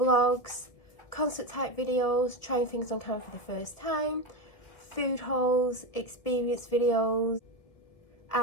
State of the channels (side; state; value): right; late; 1.7 ms